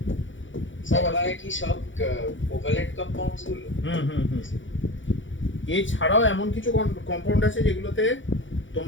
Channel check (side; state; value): right; late; 0.56 ms